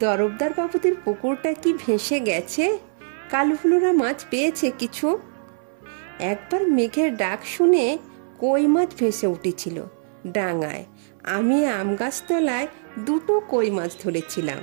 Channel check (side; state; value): left; silent; 63 dB below the other